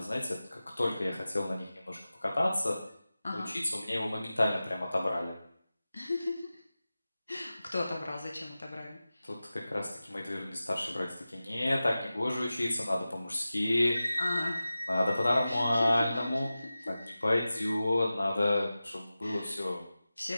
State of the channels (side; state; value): both; inverted; correlation -0.95